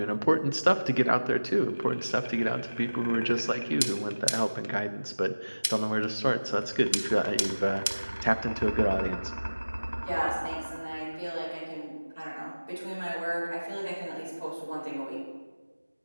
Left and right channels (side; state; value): both; inverted; correlation -1.00